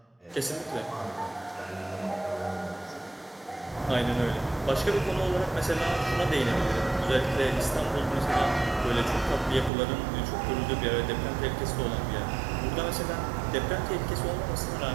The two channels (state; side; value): drops out; left; at 9.7 s